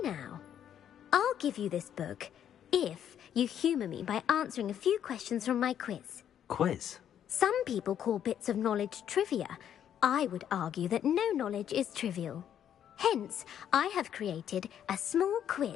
now? I'll give you this book if you humour me by answering a few questions from my quiz. Quiz? Some people call bits of knowledge trivia. I would argue that no knowledge is trivial. Hence, I have created a small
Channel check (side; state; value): right; quieter; 9.7 dB